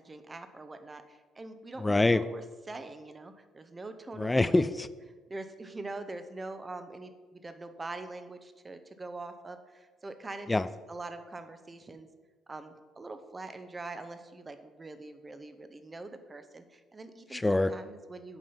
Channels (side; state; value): both; normal; correlation 0.96